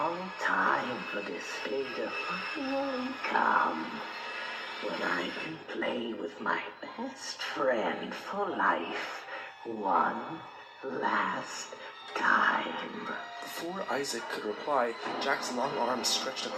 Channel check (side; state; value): both; identical; correlation 1.00